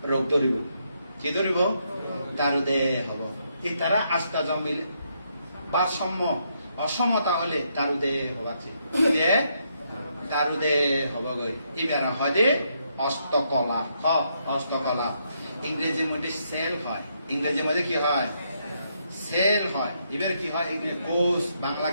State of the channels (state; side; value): inverted; both; correlation -0.76